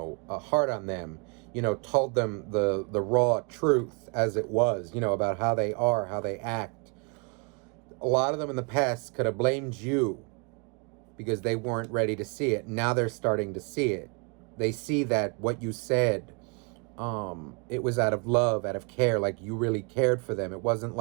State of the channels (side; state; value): left; quieter; 33.3 dB